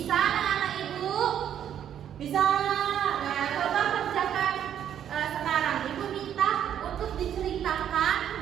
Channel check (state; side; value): quieter; left; 9.7 dB